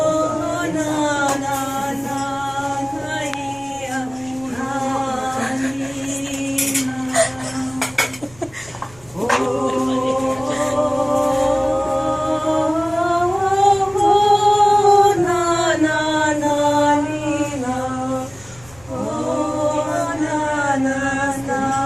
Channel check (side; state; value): right; noise; rumble, 25 dB below the sound